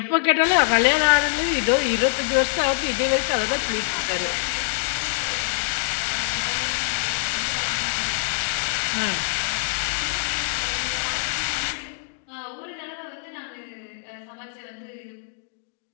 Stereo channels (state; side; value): silent; right; digital silence